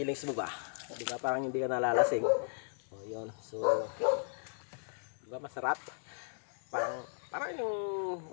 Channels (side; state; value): right; silent; 54 dB below the other